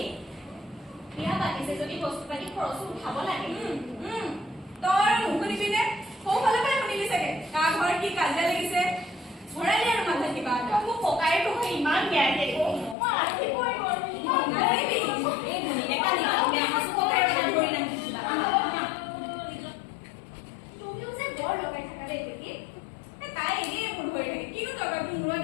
বিয়া পাতিছে যদি বস্তু পাতি খৰচো উঠাব লাগে। তই আৰু নুশুনিবি নে? সৌফালৰ পৰাই শুনিলি চাগে কাৰ ঘৰত কি কাজিয়া লাগিছে। ভৰালি আৰু মাথাত কিবা এটা। মোক ককাই তোক ইমান বেয়াকে মই ৰাখিবই নোৱাৰো। নালাগিবি। এই ভনীয়ে কালি বেয়া সাঁচো ককাই ধৰি ৰাখিছিলা। তুমিও যে বৰ লগাই থাকা দেই দেখি। তাই এনেই মোৰ ধৰি থাকে। কিনো দৰকাৰ তোৰ মূৰত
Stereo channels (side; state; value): right; drops out; at 13.0 s